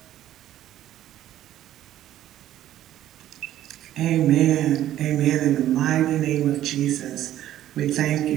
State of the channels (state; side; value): quieter; left; 12.6 dB